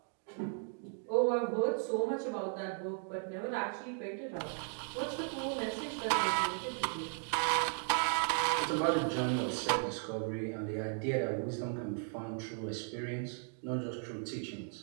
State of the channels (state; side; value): silent; left; 54 dB below the other